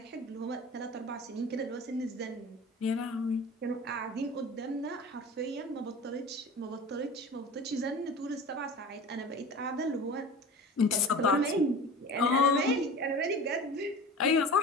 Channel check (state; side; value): normal; both; correlation 0.36